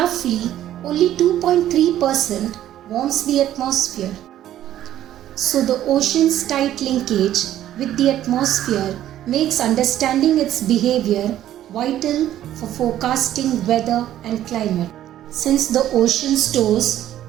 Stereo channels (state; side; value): quieter; left; 12.3 dB